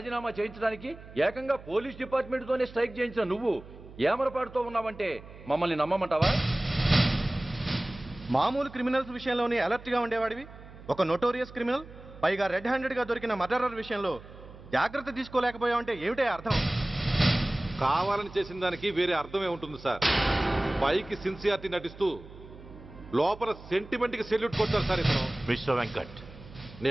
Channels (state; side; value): noise; right; hum, 18 dB below the sound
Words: చేయించడానికి ఏకంగా పోలీస్ డిపార్ట్మెంట్తోనే స్ట్రైక్ చేయించిన నువ్వు ఏమరపాటుతో ఉన్నావంటే మమ్మల్ని నమ్మమంటావా? మామూలు క్రిమినల్స్ విషయంలోనే అలర్ట్గా ఉండేవాడివి, ఒక నోటోరియస్ క్రిమినల్, పైగా రెడ్ హ్యాండెడ్గా దొరికిన మర్డరర్ విషయంలో జాగ్రత్త తీసుకోలేకపోయావంటే ఏమిటే అర్థం? కావాలని చేసిన దానికి వేరే అర్థమే ఉంటుంది సార్. పైకి సిన్సియారిటీ నటిస్తూ లోపల సెంటిమెంట్కి సెల్యూట్ కొడతారు సార్ ఇతను. మిస్టర్ వెంకట్,